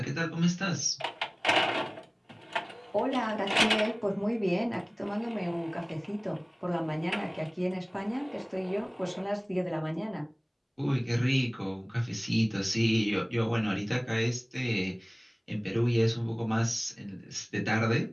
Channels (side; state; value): both; identical; correlation 1.00